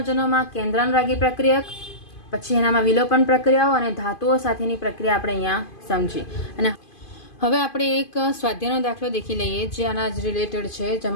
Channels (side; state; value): right; late; 2.5 ms